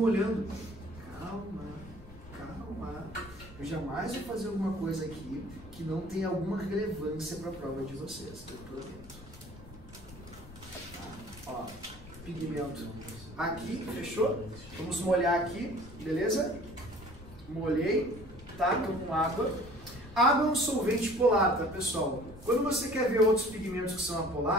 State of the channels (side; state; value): left; noise; rumble, 17 dB below the sound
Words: Calma, calma. Eu jamais vou fazer alguma coisa aqui que não tenha alguma relevância para a prova de vocês, eu prometo. Ó, pigmento aqui, fechou? Vamos molhar aqui, beleza? Molhei, tá? Tô com água. Água é um solvente polar, tá, pessoal? Quando você quer ver outros pigmentos que são